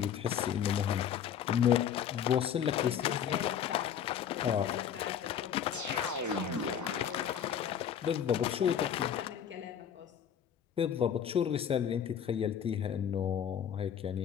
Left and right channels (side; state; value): right; quieter; 8.7 dB